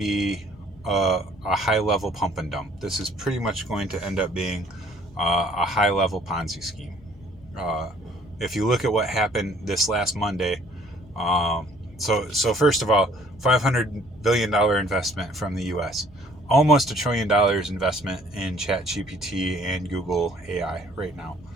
a high-level pump and dump. This is pretty much going to end up being a high-level Ponzi scheme. If you look at what happened this last Monday, so first of all, $500 billion investment from the U.S., almost $1 trillion investment in ChatGPT and Google AI right now.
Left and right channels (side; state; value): both; normal; correlation 0.58